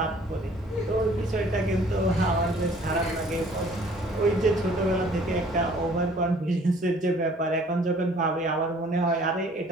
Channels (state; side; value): normal; both; correlation 0.55